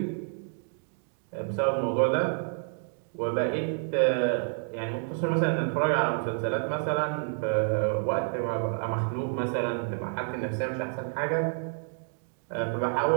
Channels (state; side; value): silent; left; 59 dB below the other